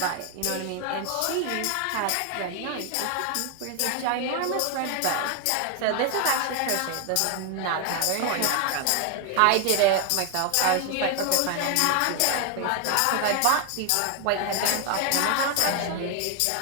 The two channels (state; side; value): different; both; correlation 0.01